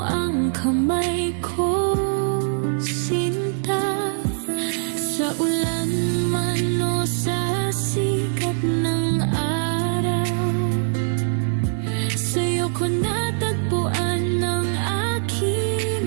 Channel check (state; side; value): silent; left; digital silence